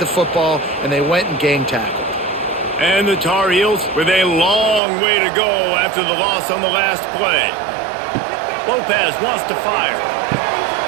football, and they went and gang tackled. And the Tar Heels with a long way to go after the loss on the last play. Lopez wants to fire.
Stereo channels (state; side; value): drops out; left; at 4.8 s